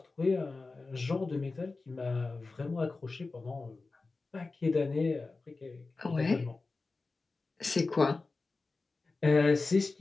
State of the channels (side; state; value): right; quieter; 3.7 dB